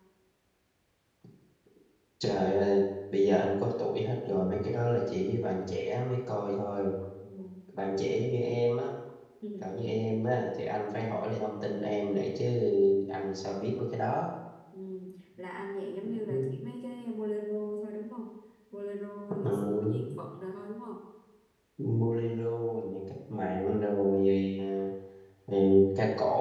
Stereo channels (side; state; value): both; identical; correlation 1.00